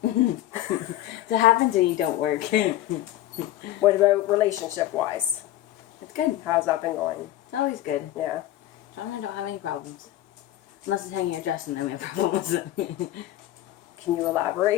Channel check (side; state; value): right; quieter; 13.9 dB